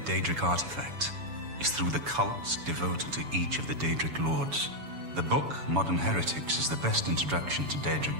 Daedric artifact is through the cults devoted to each of the Daedric Lords. The book, Modern Heretics, is the best introduction to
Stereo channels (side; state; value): left; late; 7.1 ms